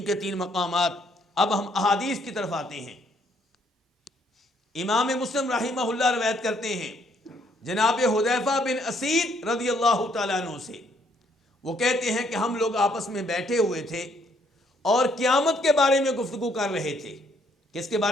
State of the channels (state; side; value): normal; both; correlation 0.68